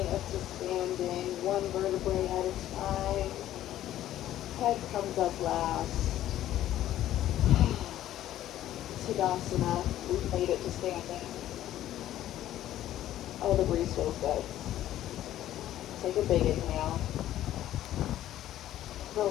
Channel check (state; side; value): quieter; right; 12.9 dB